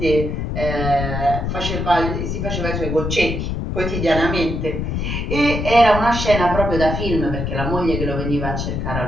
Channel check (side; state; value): left; noise; rumble, 2 dB below the sound